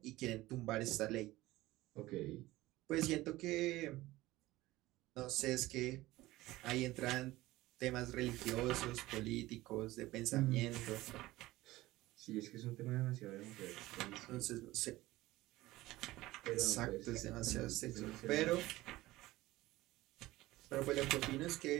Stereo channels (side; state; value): left; quieter; 17.8 dB